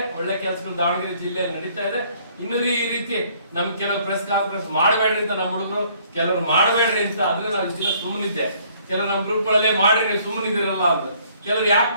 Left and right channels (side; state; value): both; inverted; correlation -0.61